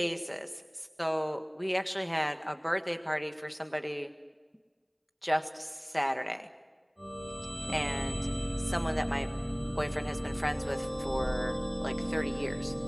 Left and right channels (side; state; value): both; identical; correlation 1.00